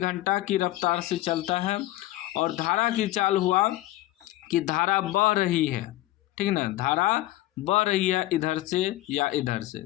की रफ्तार से चलता है। और धारा की चाल हुआ कि धारा बह रही है, ठीक ना, धारा बह रही है इधर से या इधर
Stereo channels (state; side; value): quieter; right; 16.5 dB